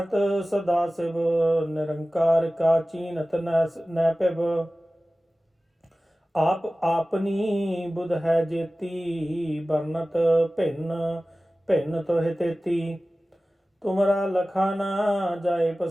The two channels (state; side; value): normal; both; correlation 0.96